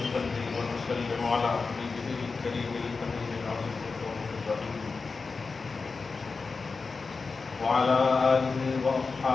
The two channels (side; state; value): right; quieter; 4.4 dB